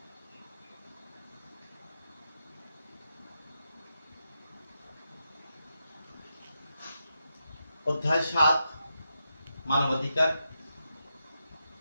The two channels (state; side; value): inverted; both; correlation -0.86